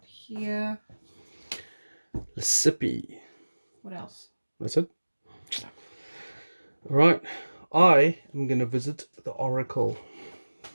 here. Lisipi. What else? That's it. All right. I am going to visit the Oracle.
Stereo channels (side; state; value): both; inverted; correlation -1.00